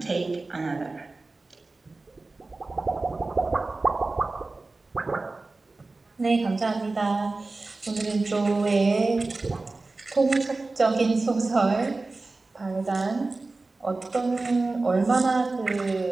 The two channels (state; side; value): quieter; left; 3.4 dB